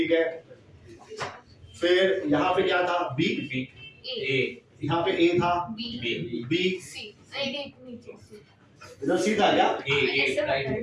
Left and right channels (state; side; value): identical; both; correlation 1.00